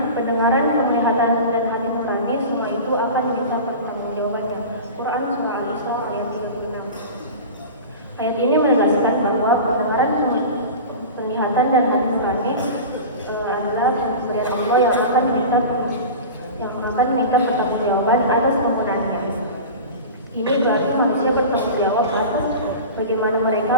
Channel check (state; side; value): inverted; both; correlation -0.32